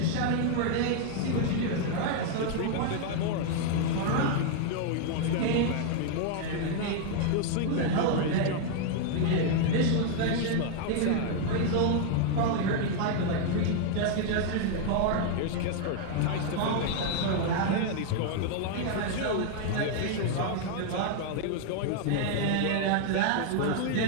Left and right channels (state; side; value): different; both; correlation 0.00